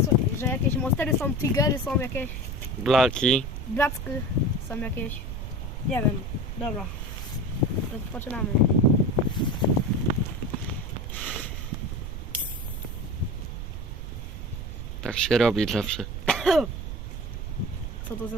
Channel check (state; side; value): noise; right; rumble, 6 dB below the sound